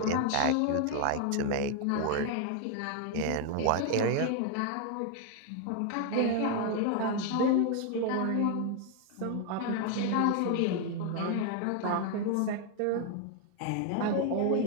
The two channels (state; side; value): different; both; correlation 0.00